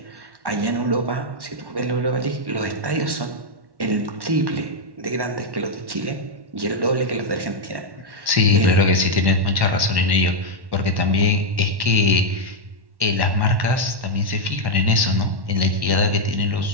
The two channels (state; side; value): late; left; 1.1 ms